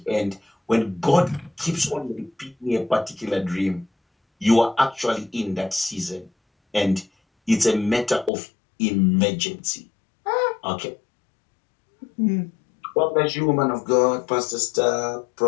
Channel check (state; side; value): drops out; right; at 8.3 s